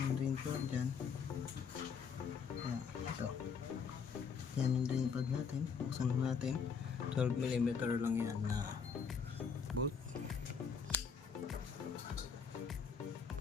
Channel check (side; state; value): right; quieter; 6.1 dB